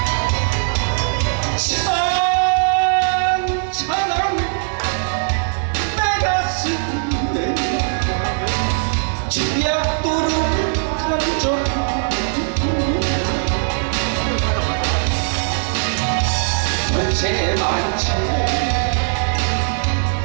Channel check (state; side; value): silent; left; digital silence